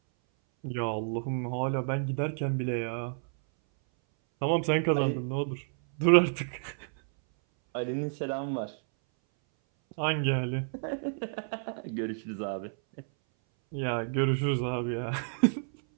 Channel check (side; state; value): left; silent; 58 dB below the other